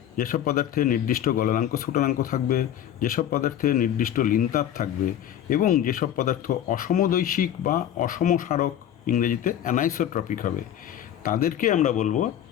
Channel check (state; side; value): quieter; right; 10.7 dB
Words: যেসব পদার্থের নির্দিষ্ট গলনাঙ্ক স্ফুটনাঙ্ক থাকবে, যেসব পদার্থের নির্দিষ্ট লিনতাপ থাকবে এবং যেসব পদার্থ অসমদৈশিক বা অসমসারক, ইংরেজিতে অ্যানাইসোট্রপিক হবে, তাদেরকে আমরা বলবো